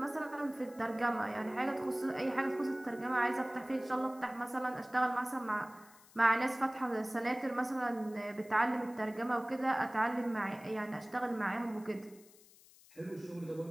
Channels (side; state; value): left; noise; hiss, 24 dB below the sound